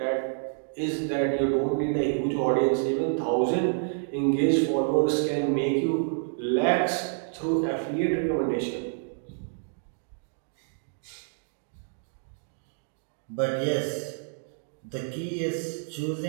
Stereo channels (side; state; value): left; silent; digital silence